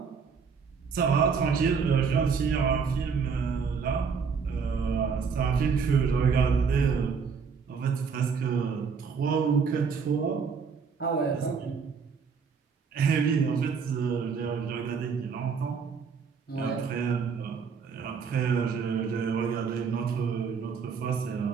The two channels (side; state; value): left; quieter; 5.8 dB